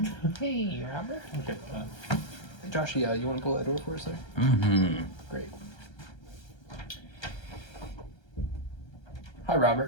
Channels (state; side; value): late; right; 1.3 ms